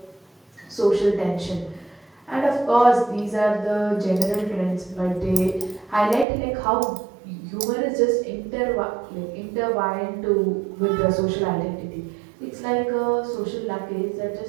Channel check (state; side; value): drops out; left; at 6.2 s